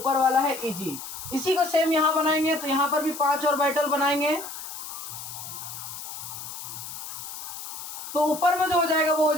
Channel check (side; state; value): left; noise; hiss, 10 dB below the sound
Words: वाला है EG। इसी को सेम यहाँ बनाएंगे, तो यहाँ पर भी 5 ऑर्बिटल बनाएंगे, तो ऊपर में जो हो जाएगा वो हो